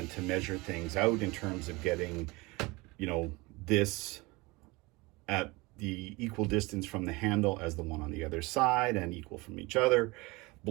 to measure things out in terms of getting, you know, this at the equal distance from the handle as the one on the other side, and equal from each other,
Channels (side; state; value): left; quieter; 23.9 dB